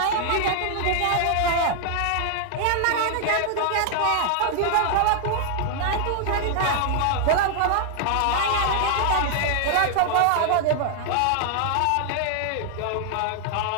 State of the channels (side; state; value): both; different; correlation 0.00